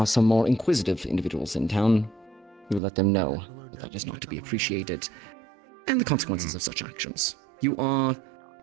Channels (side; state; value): left; drops out; at 2.8 s